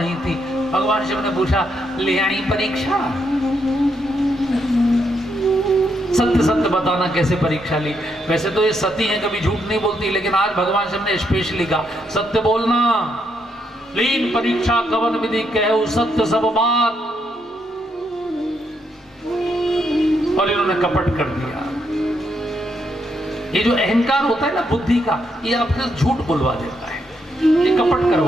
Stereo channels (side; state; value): both; normal; correlation 0.77